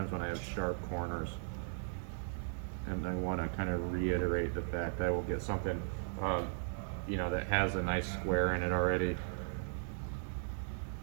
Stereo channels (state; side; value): silent; left; digital silence